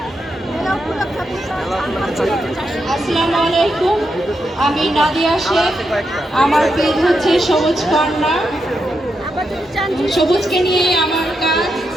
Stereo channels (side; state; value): both; normal; correlation 0.84